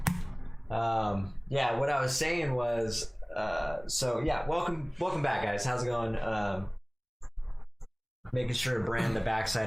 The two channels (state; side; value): identical; both; correlation 1.00